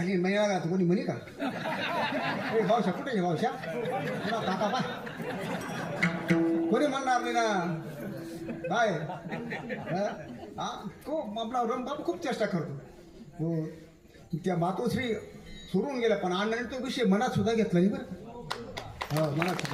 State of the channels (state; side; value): identical; both; correlation 1.00